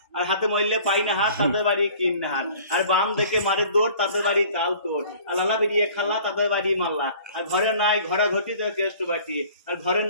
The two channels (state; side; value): inverted; both; correlation -0.49